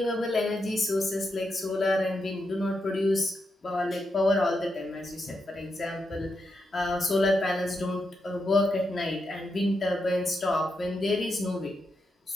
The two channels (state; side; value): normal; both; correlation 0.85